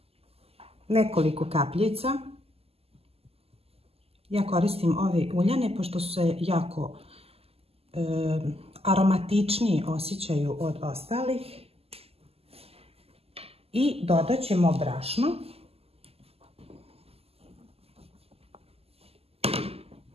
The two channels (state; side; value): late; left; 0.29 ms